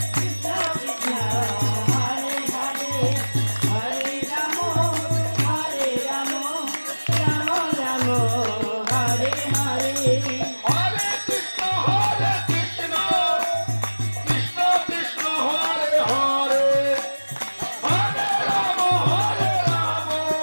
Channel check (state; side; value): inverted; both; correlation -1.00